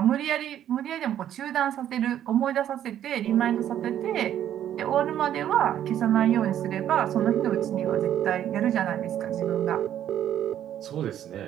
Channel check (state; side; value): quieter; left; 10.9 dB